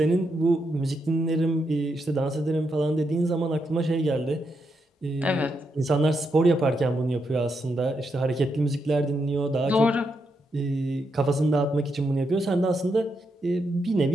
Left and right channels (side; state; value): both; normal; correlation 0.82